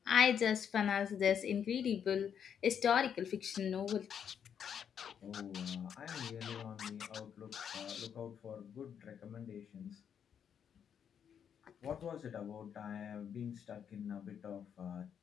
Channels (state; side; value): quieter; right; 8.1 dB